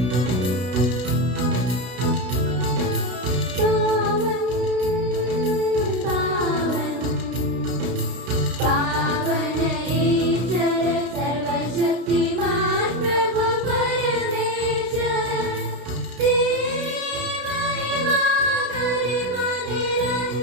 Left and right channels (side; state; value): left; late; 32 ms